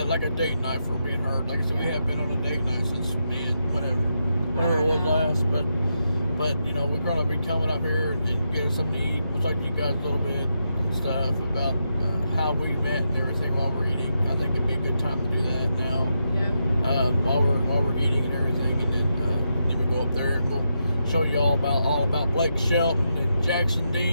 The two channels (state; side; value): inverted; both; correlation -0.84